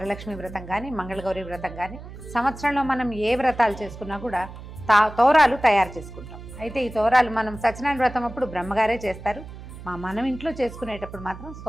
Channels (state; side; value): noise; right; hum, 14 dB below the sound